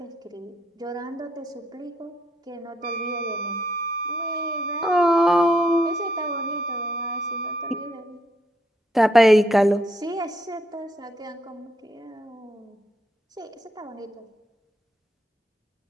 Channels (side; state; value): both; normal; correlation 0.75